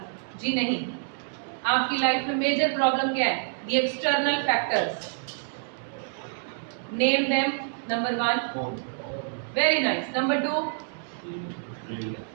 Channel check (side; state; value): left; silent; digital silence